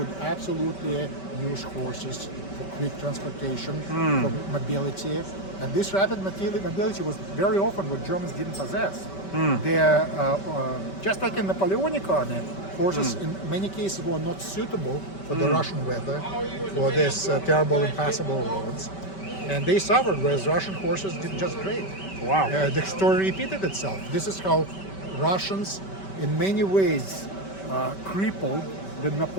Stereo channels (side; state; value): right; late; 5.2 ms